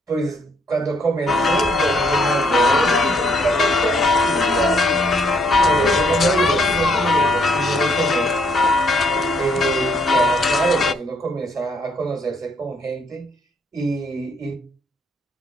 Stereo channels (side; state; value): both; normal; correlation 0.69